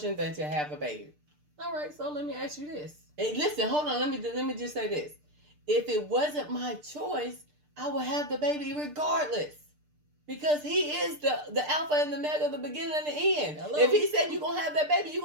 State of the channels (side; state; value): left; late; 6.7 ms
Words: than to have a baby. All right, so let me ask you this. And listen, hold on. Let me just say this. If it wasn't my choice, I would have the baby regardless. Because he is the alpha and the omega, the beginning and the end. Hello. If he said you're going to have that baby, you're